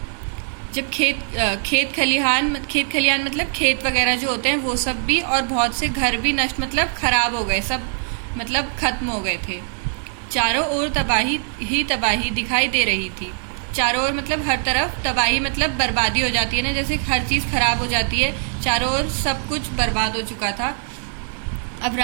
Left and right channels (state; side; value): silent; left; digital silence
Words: जब खेत खलिहान मतलब खेत वगैरह जो होते हैं वो सब भी, और बहुत से घर भी नष्ट मतलब खराब हो गए, सब मतलब खत्म हो गए थे। चारों ओर तबाही ही तबाही दिखाई दे रही थी। चारों ओर मतलब हर तरफ, तबाही मतलब बर्बादी हो जाती है ना, जैसे हर चीज खराब हो जाती है। चारों ओर सब कुछ बर्बाद हो चुका था। अब